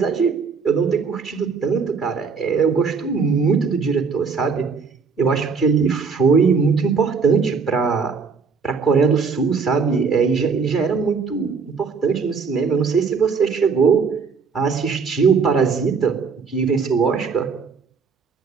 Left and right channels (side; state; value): left; quieter; 5.3 dB